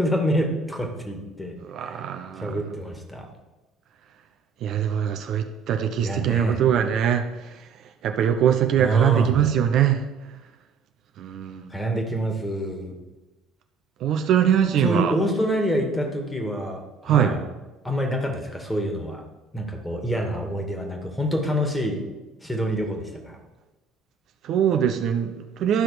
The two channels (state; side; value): quieter; left; 5.1 dB